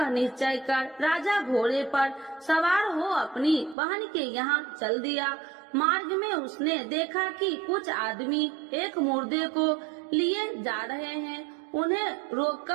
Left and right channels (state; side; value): drops out; left; at 3.8 s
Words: निश्चय कर राजा घोड़े पर सवार हो अपनी बहन के यहाँ चल दिया। मार्ग में उसने देखा कि कुछ आदमी एक मुर्दे को लिए जा रहे हैं। उन्हें